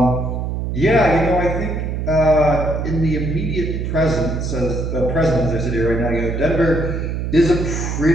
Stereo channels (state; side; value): noise; right; hum, 3 dB below the sound